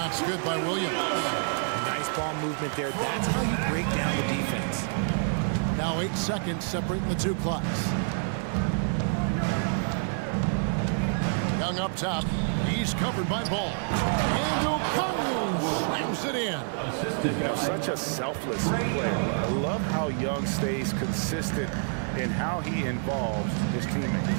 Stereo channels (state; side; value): silent; left; digital silence